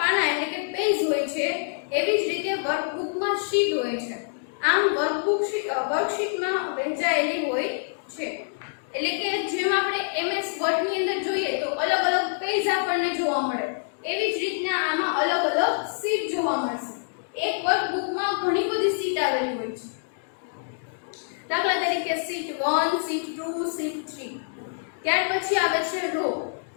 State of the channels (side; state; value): right; silent; digital silence